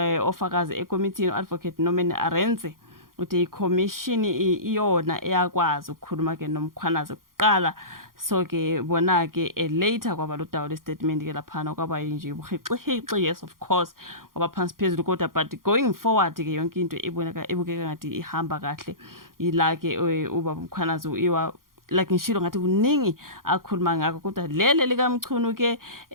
ofakazi ekomithini advocate Norman Arendse uthi iCommission iyona eyakwazi ukukhuluma ke noMkhwanazi kuqala. So ke bona ke later kwaba lo dawo le statement ke laphana kwaba nje ubuhixihixi, yes of course ngoba phansi phezulu kodwa but going forward ke yonke into ebukeka ngathi ihamba kahle ila ke ubaba uMkhwanazi iwa like ngishilo ngathi kuningi akhuluma ngakho kodwa lele likaMchunu ke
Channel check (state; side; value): late; left; 0.91 ms